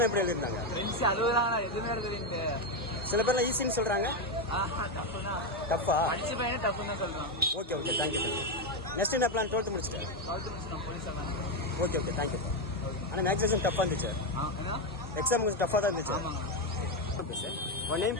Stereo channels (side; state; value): both; normal; correlation 0.08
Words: எப்படி எழுதிருந்தாங்க? ஃப்ரெண்ட்ஸ் 60 தான், எதுவுமே எழுதுறீங்க. சில பேர்லாம் ஈஸின்னு சொல்றாங்க. டஃபா? அடிச்சு பையனே டஃப்னு தான் சொல்றான். Okay okay, thank you sir. Next என்ன பிளான்? 12th முடிச்சிட்டேன். போலீஸ் ஆகலாம். Okay okay, thank you. ஆனால் மேக்ஸ் எக்ஸாம் டஃப்பாக இருந்துச்சு. எக்ஸாம் கொஞ்சம் டஃப்பாக தான் இருந்துச்சு. Okay sir. உன்